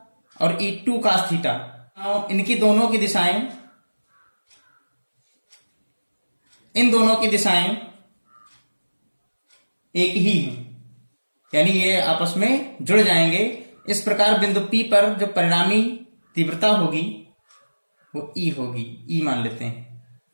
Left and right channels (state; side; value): inverted; both; correlation -1.00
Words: और E2 cos थीटा, इनकी दोनों की दिशाएं, इन दोनों की दिशाएं एक ही हैं, यानी ये आपस में जुड़ जाएंगे। इस प्रकार बिंदु P पर जो परिणामी तीव्रता होगी वो E होगी, E मान लेते हैं।